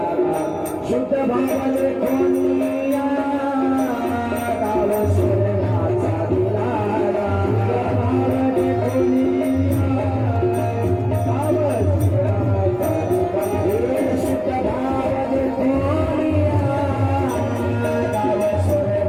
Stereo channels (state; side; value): identical; both; correlation 1.00